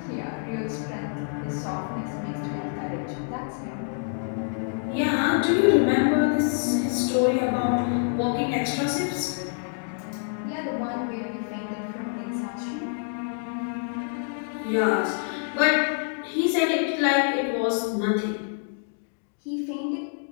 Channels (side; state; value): right; silent; 60 dB below the other